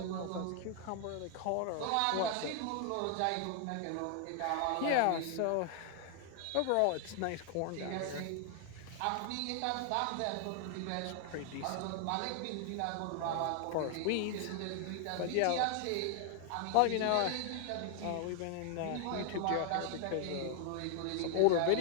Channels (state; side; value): different; both; correlation 0.00